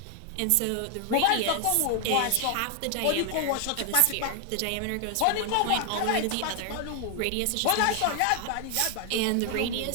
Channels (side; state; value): both; different; correlation 0.00